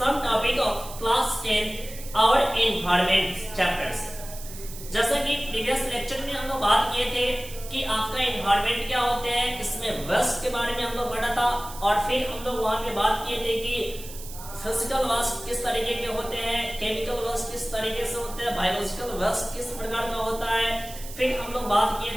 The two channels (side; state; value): right; noise; hiss, 14 dB below the sound